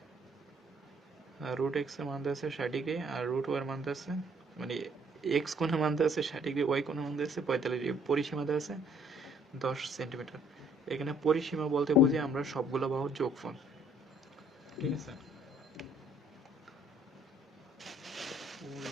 এর মান দেওয়া আছে 60 ডিগ্রি আর রুট ওয়াই এর মান দেওয়া আছে, মানে এক্স কোণের মান দেওয়া আছে 60 ডিগ্রি, ওয়াই কোণের মান দেওয়া আছে 45 ডিগ্রি, পরিসীমা দেওয়া আছে 10 সেন্টিমিটার। এখানে পরিসীমা বলতে বুঝি আমরা সবগুলো বাহুর যোগফল। ঠিক আছে,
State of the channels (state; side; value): normal; both; correlation 0.62